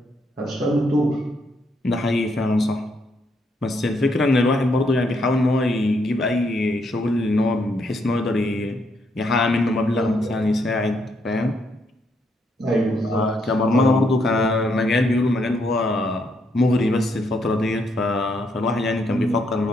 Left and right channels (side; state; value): both; normal; correlation 0.75